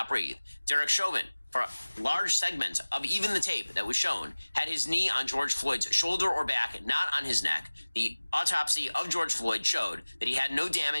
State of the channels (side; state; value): both; inverted; correlation -1.00